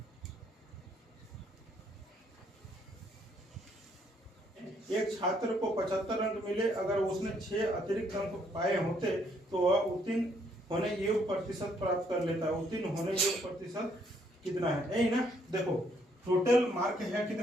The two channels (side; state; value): both; normal; correlation 0.69